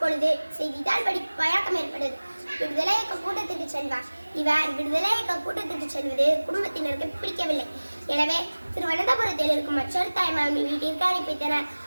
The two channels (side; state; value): both; inverted; correlation -1.00